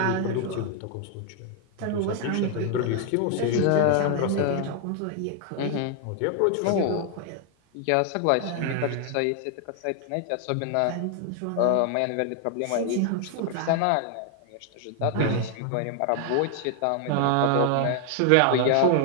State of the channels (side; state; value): both; different; correlation 0.00